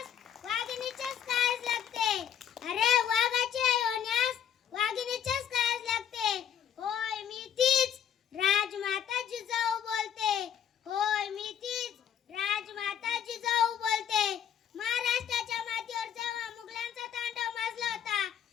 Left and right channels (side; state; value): right; quieter; 8.9 dB